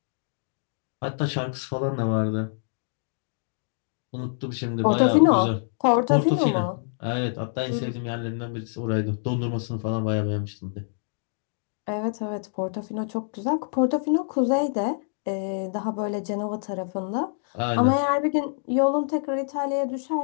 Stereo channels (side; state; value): right; silent; digital silence